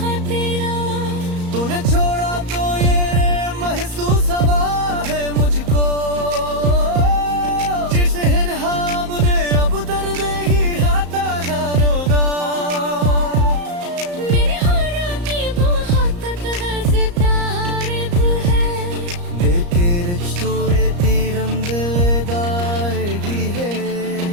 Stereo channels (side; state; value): left; late; 34 ms